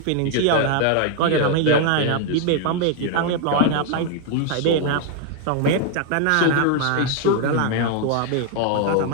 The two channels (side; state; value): both; different; correlation 0.00